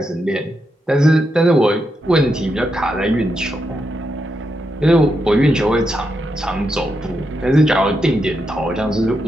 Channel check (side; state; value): both; normal; correlation 0.84